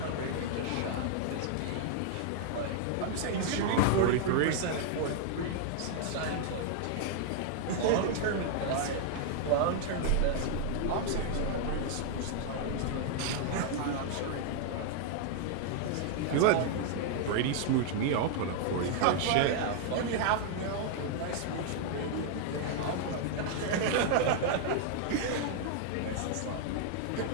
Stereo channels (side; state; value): both; different; correlation 0.00